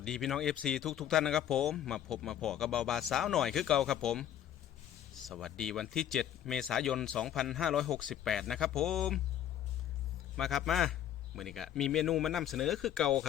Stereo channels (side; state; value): right; quieter; 10.7 dB